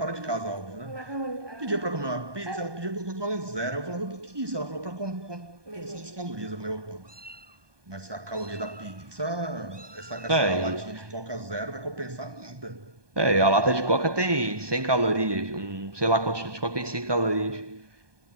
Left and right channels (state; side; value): late; left; 1.2 ms